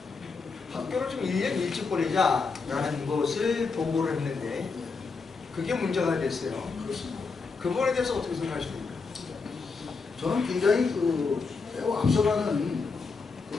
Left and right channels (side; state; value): right; quieter; 4.6 dB